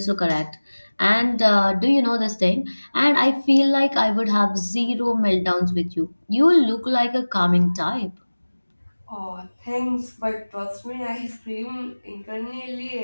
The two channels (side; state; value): both; inverted; correlation -1.00